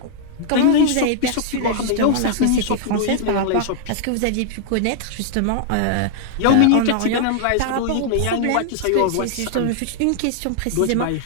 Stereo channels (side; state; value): both; different; correlation 0.00